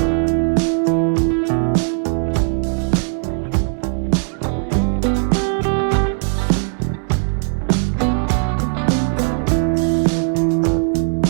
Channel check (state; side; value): silent; left; 63 dB below the other